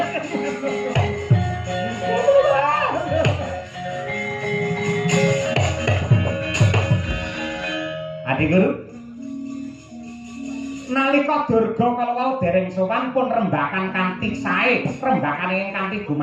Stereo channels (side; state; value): both; identical; correlation 1.00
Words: Adi Guru nalika Durga kalawau dereng sowan pun rembakan kanthi sae rembakan ingkang kanthi